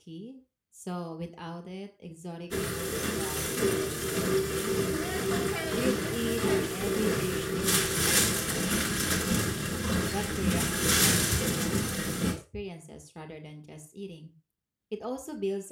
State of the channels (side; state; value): both; identical; correlation 1.00